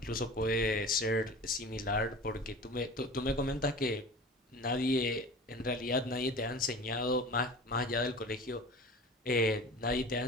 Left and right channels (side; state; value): both; normal; correlation 0.38